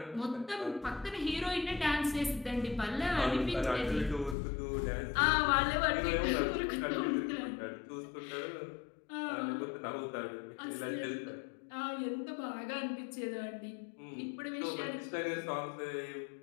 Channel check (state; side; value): drops out; right; at 4.4 s